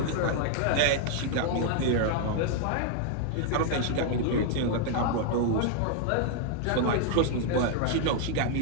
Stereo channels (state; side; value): different; both; correlation 0.00